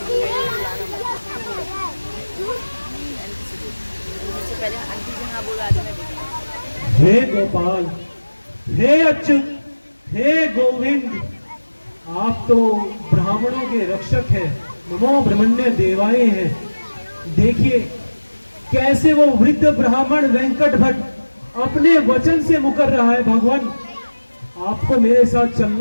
हे गोपाल, हे अच्युत, हे गोविंद, आप तो ब्राह्मणों के रक्षक हैं, नमो ब्रह्मण्य देवाय हैं। देखिए कैसे वो वृद्ध ब्राह्मण वेंकट भट्ट अपने वचन से मुकर रहा है। भगवान, आपको मेरे साथ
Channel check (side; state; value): both; inverted; correlation -1.00